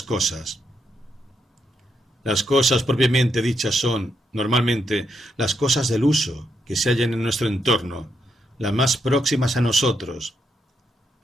cosas. Las cosas propiamente dichas son, normalmente, las cosas del uso que se hallan en nuestro entorno, las más próximas a nosotros.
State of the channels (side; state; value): both; normal; correlation 0.80